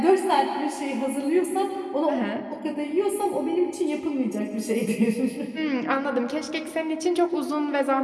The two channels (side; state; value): both; identical; correlation 1.00